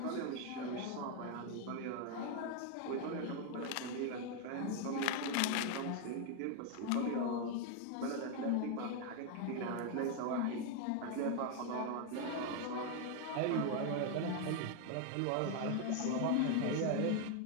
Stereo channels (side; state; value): both; different; correlation 0.01